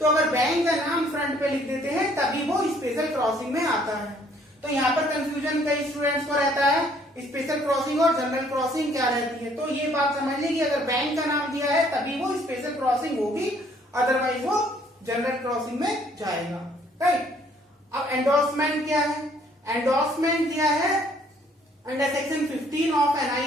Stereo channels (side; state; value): both; normal; correlation 0.62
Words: अगर बैंक का नाम फ्रंट पे लिख देते हैं तभी वो स्पेशल क्रॉसिंग में आता है। तो यहाँ पर कंफ्यूजन कई स्टूडेंट्स को रहता है, स्पेशल क्रॉसिंग और जनरल क्रॉसिंग क्या रहती है। तो ये बात समझ लें कि अगर बैंक का नाम दिया है तभी वो स्पेशल क्रॉसिंग होगी, अदरवाइज वो जनरल क्रॉसिंग में जाएगा, राइट। अब एंडोर्समेंट क्या है, एंडोर्समेंट दिया है under section 15 of